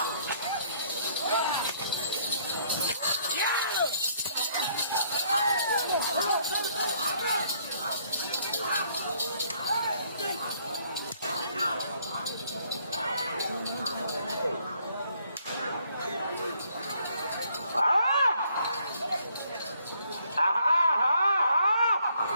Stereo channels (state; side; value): inverted; both; correlation -0.66